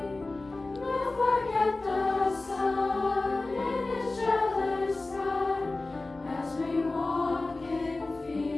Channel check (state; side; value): quieter; right; 3.2 dB